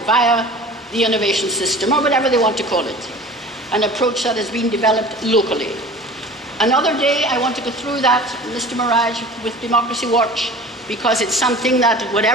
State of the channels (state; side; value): normal; both; correlation 0.41